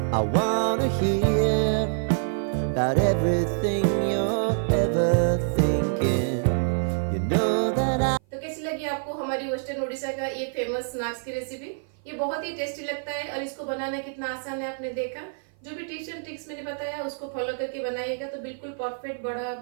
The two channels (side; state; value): left; silent; 55 dB below the other